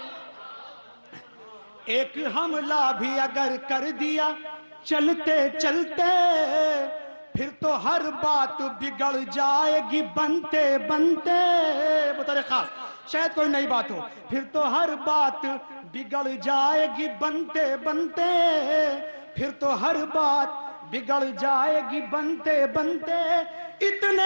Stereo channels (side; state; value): both; inverted; correlation -1.00